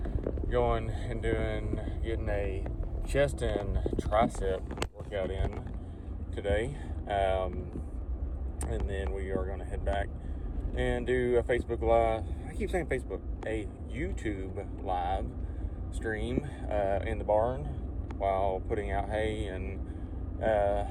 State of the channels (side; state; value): both; identical; correlation 1.00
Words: going and getting a chest and tricep workout in today, and then we are going to head back and do a Facebook Live. I keep saying Facebook, a YouTube Live stream in the barn while putting out hay, and